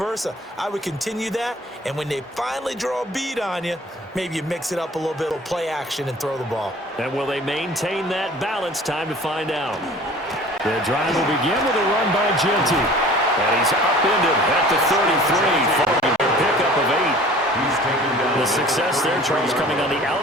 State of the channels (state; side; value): normal; both; correlation 0.47